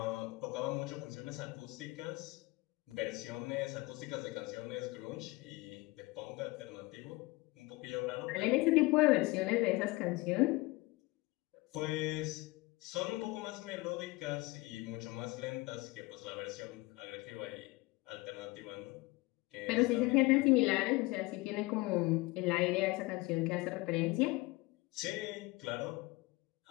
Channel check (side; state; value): right; quieter; 22.5 dB